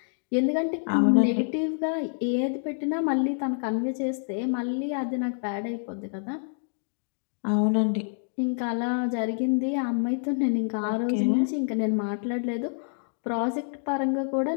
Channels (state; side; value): silent; right; digital silence